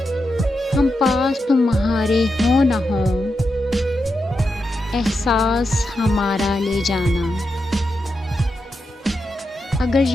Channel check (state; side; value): normal; both; correlation 0.87